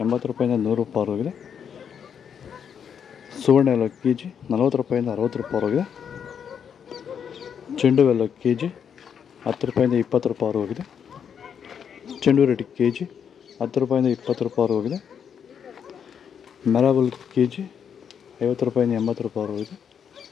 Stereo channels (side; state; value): right; quieter; 7.7 dB